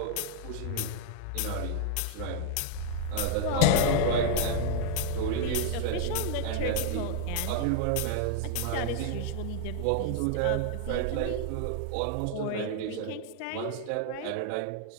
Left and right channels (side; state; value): both; different; correlation 0.00